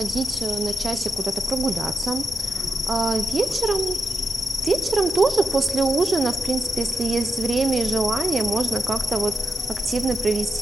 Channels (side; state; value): both; normal; correlation 0.87